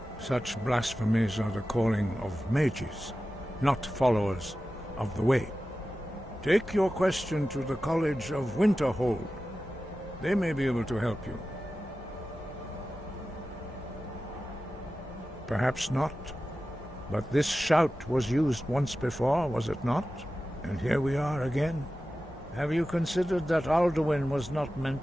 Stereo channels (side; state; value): both; normal; correlation 0.94